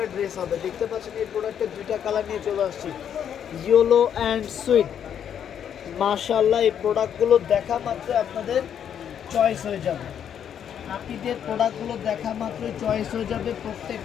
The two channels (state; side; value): quieter; right; 8.9 dB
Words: ড্রেস হবে। দেখতে পাচ্ছেন এই প্রোডাক্টের দুইটা কালার নিয়ে চলে আসছি, ইয়েলো অ্যান্ড সুইট। মাশাআল্লাহ এই প্রোডাক্টগুলো দেখা মাত্র আপনাদের চয়েস হয়ে যাবে। নাপিদের প্রোডাক্টগুলো দেখা মাত্রই চয়েস হয়ে যাবে।